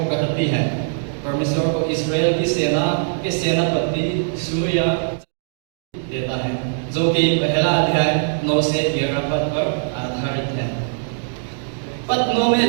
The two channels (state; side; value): silent; left; digital silence